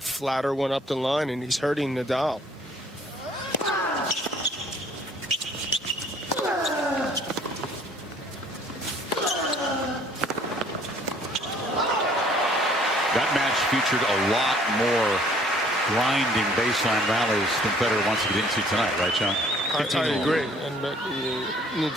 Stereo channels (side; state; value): both; normal; correlation 0.58